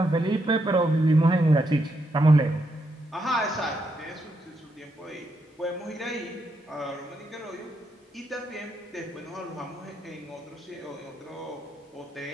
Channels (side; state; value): both; normal; correlation 0.80